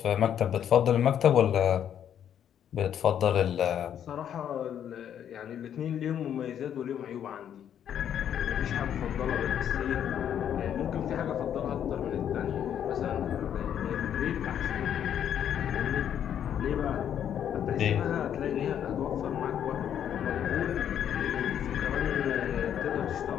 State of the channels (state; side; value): quieter; right; 9.5 dB